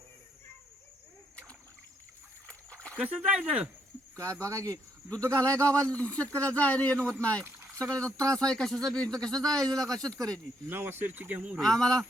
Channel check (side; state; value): both; normal; correlation 0.74